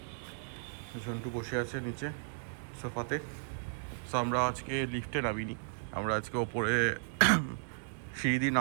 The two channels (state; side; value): silent; left; 55 dB below the other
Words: ঝন্টু বসে আছে নিচে সোফাতে। সো আমরা আজকে লিফটে নামিনি, আমরা আজকে ওপরে সিঁড়ি দিয়ে